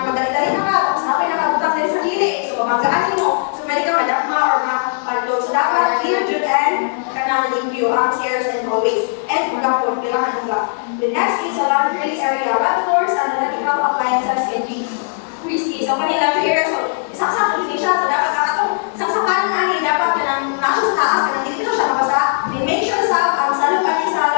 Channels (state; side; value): silent; right; digital silence